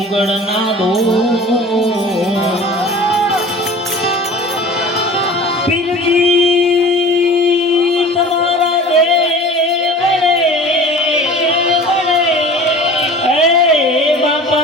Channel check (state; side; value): normal; both; correlation 0.40